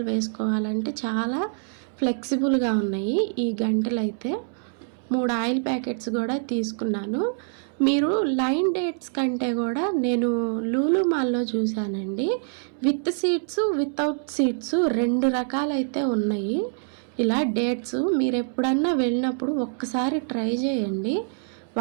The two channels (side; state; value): left; silent; 62 dB below the other